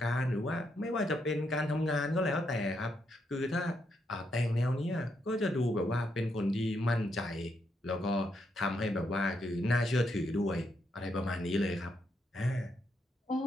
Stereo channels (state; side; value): normal; both; correlation 0.79